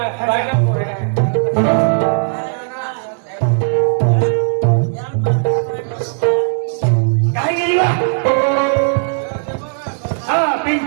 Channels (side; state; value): left; silent; 69 dB below the other